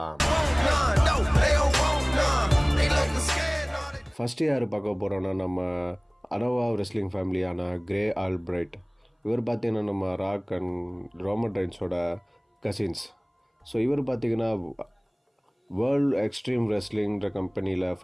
ஃபஸ்ட்டு யார் பார்க்க போகிறோன்னா, நம்ம அனோவா ரெஸ்லிங் ஃபேமிலியான கிரே ஆல்பிரைட். இவர் பார்த்திங்கன்னா நம்ம ராக் அண்ட் ரோமன் ரெயின்ஸோட கசின்ஸ். ஸோ இவர் பார்த்திங்கன்னா வேர்ல்டு எக்ஸ்ட்ரீம் ரெஸ்லிங்கிற கம்பெனியில்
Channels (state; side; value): identical; both; correlation 1.00